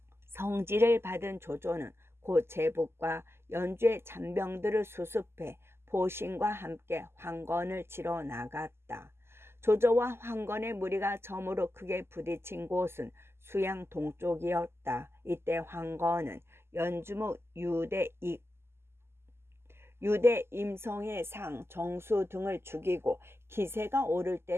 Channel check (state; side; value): late; left; 0.12 ms